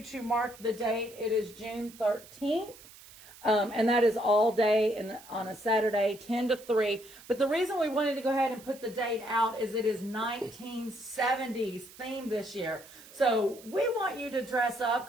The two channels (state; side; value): noise; right; hiss, 20 dB below the sound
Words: to mark the date. It is June 13th. And that is all day and on a Saturday, 10 to 3. But the reason we wanted to go ahead and put the date out is it is 1970s themed this year. So we want you to dress up